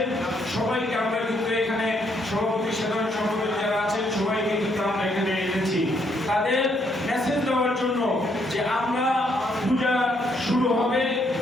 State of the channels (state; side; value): normal; both; correlation 0.72